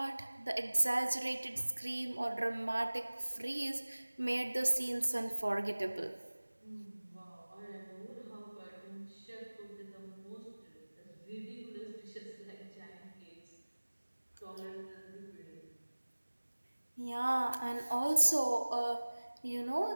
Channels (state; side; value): inverted; both; correlation -1.00